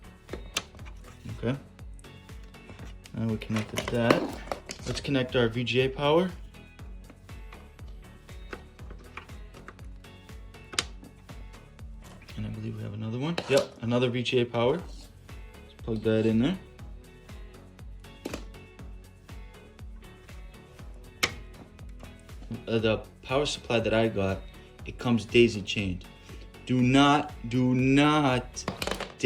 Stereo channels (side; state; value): both; identical; correlation 1.00